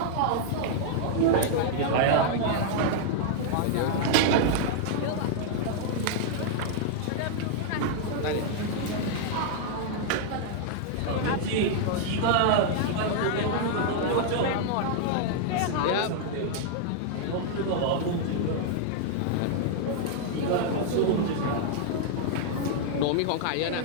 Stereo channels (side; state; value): both; different; correlation 0.00